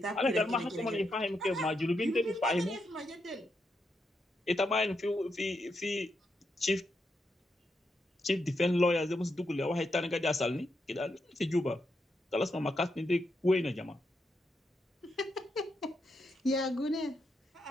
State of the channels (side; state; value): both; normal; correlation 0.83